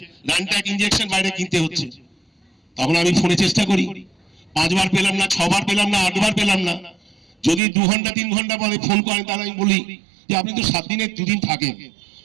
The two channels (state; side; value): drops out; left; at 7.6 s